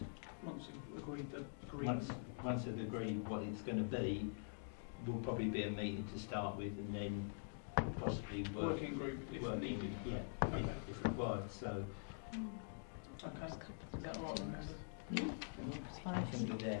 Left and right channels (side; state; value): right; silent; digital silence